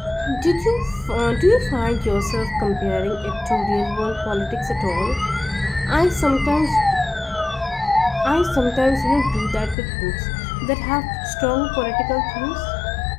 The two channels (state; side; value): drops out; right; at 9.8 s